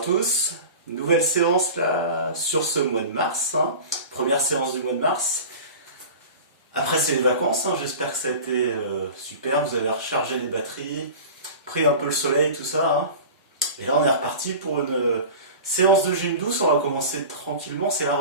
tous, nouvelle séance là sur ce mois de mars, hein. Première séance du mois de mars. Après c'est les vacances, hein. J'espère que ça a été super, vous avez rechargé les batteries, pris un peu le soleil, tout ça, hein. Et là on est reparti pour une séance de gym douce, on va commencer tranquillement, c'est la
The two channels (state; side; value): inverted; both; correlation -0.35